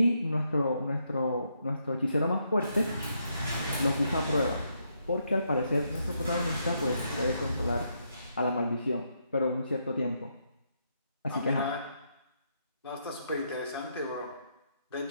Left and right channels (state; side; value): inverted; both; correlation -0.78